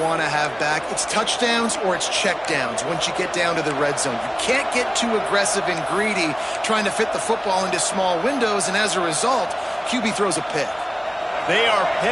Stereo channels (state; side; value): identical; both; correlation 1.00